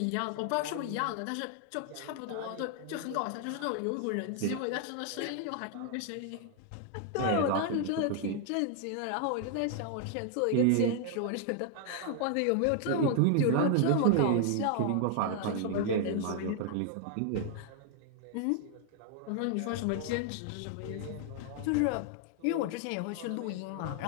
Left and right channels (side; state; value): both; different; correlation 0.00